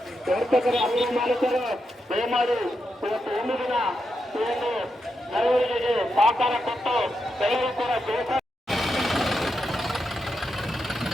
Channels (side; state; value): both; normal; correlation 0.85